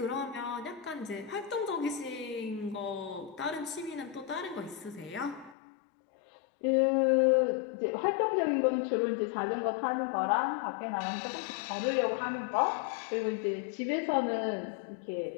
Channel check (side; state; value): right; drops out; at 5.6 s